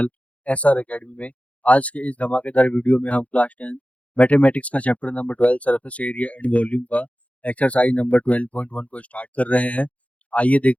एसआर अकेडमी में। आज के इस धमाकेदार वीडियो में हम क्लास 10 मैथमेटिक्स का chapter number 12 surface area and volume का एक्सरसाइज नंबर 12.1 को स्टार्ट कर रहे हैं। आइए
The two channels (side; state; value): right; late; 0.066 ms